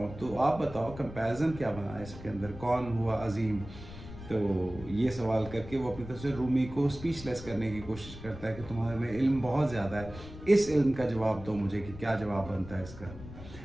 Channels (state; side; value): noise; left; rumble, 14 dB below the sound